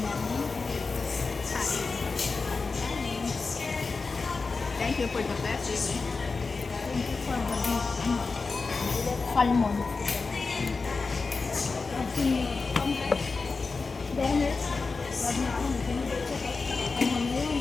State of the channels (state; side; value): quieter; right; 4.3 dB